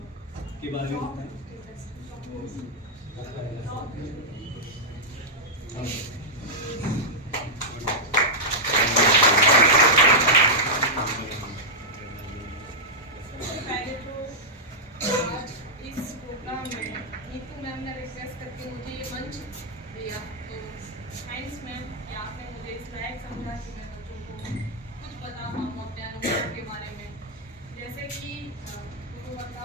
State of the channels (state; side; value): normal; both; correlation -0.06